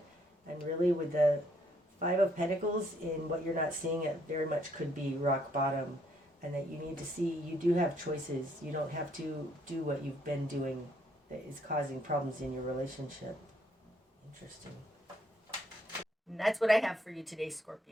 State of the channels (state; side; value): normal; both; correlation 0.69